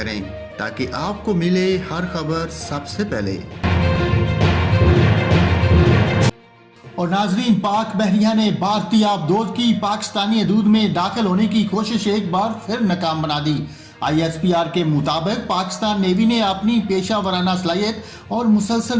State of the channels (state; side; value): identical; both; correlation 1.00